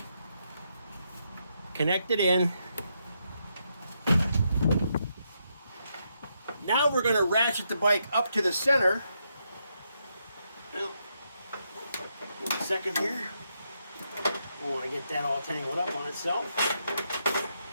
connect it in. Now we're going to ratchet the bike up to the center. Well, give me a second here. I want to get that all tangled up on itself.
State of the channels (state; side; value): inverted; both; correlation -0.80